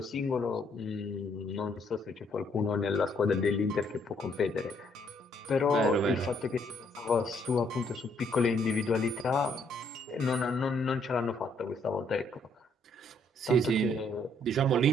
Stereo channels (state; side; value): normal; both; correlation 0.68